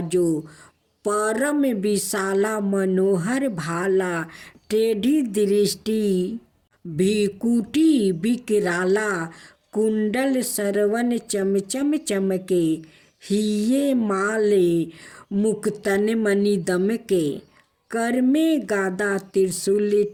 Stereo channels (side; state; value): both; identical; correlation 1.00